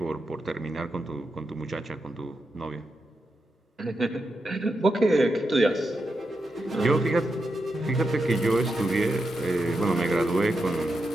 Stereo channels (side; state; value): both; normal; correlation 0.86